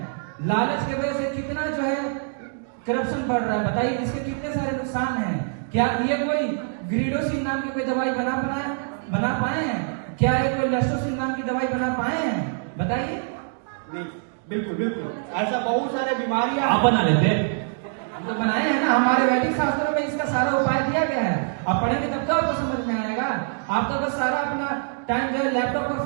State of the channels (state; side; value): silent; left; 62 dB below the other